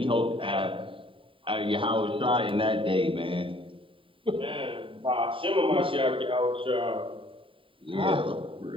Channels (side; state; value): left; late; 0.25 ms